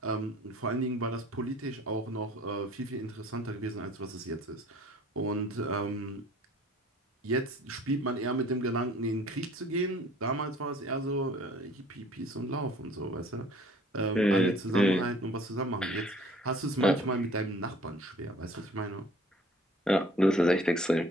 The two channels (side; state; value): both; normal; correlation 0.52